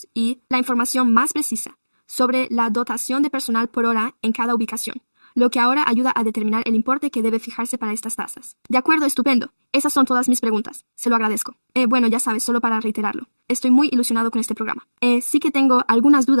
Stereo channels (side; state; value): both; inverted; correlation -1.00